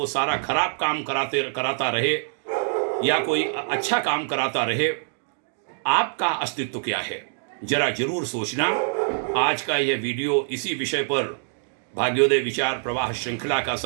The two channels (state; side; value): silent; left; digital silence